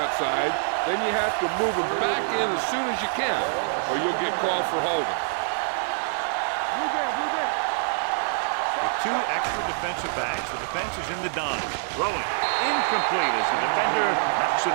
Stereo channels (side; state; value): left; silent; 61 dB below the other